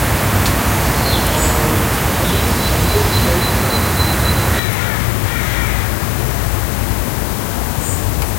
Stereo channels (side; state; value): right; drops out; at 4.6 s